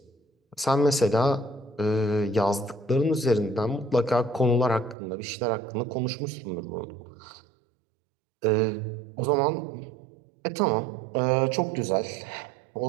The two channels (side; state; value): left; drops out; at 5.0 s